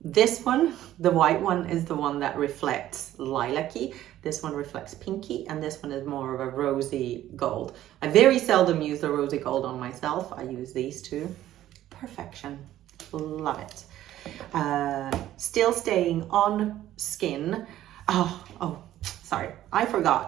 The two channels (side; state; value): left; quieter; 13.3 dB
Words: This one, the white one, is the one that reflects lilac-y. This one reflects pinky, and this one is more of a rosy gold. I very seldom use the rosy gold on myself. I use these two. Perfection. Love it. Still staying on skin. Oh, sorry, I